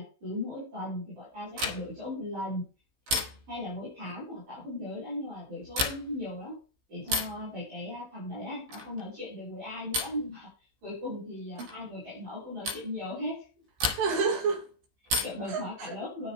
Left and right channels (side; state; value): left; late; 16 ms